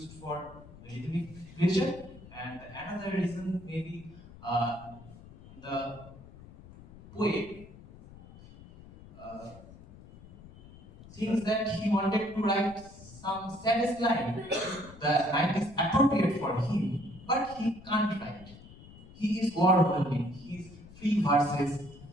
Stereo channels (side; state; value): left; noise; rumble, 19 dB below the sound